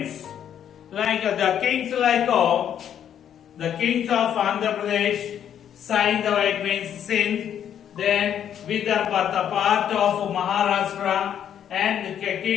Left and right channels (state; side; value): quieter; right; 9.5 dB